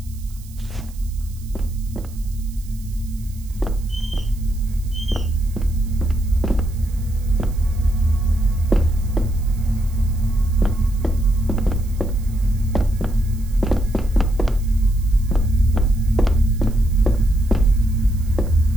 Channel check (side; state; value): right; noise; hiss, 23 dB below the sound